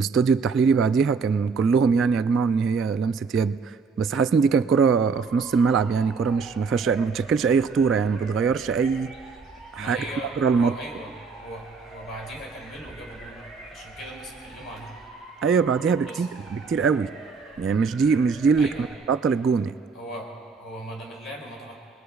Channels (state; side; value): quieter; left; 5.1 dB